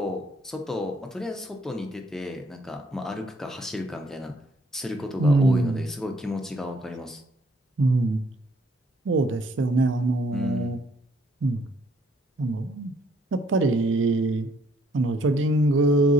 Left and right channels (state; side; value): normal; both; correlation 0.66